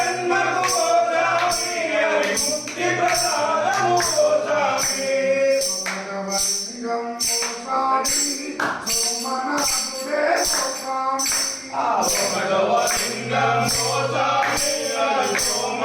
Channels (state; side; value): identical; both; correlation 1.00